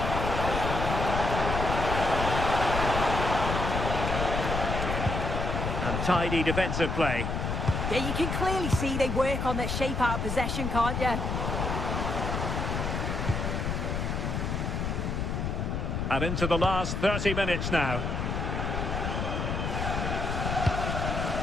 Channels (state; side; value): noise; left; rumble, 1 dB below the sound